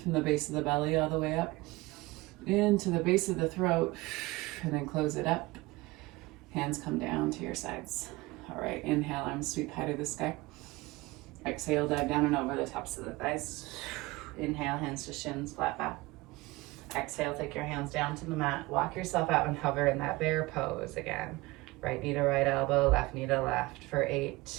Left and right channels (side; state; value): left; quieter; 21.5 dB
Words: from the base of the belly all the way up into the base of the throat, and then close it up. Hands come down to your sides. All right, inhale, arms sweep high to the sky. Exhale, dive down and over the tops of the thighs. Inhale, hands to shins, flat back. Exhale, take your hands down to the mat. Walk yourself out and hover in that bear pose again. Right knee to right elbow, left knee to left for 8,